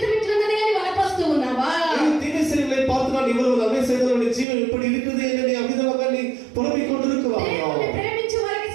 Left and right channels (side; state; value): left; drops out; at 4.5 s